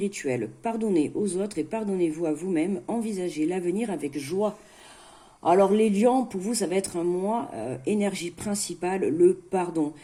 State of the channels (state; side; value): identical; both; correlation 1.00